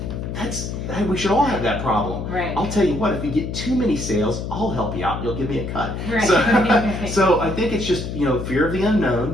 we should all have that problem. Right. I'll tell you what, if you get too many sales, I'll help you out. You'll give me a cut. Right. So, so I think it's just fear of the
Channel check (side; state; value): left; noise; hum, 5 dB below the sound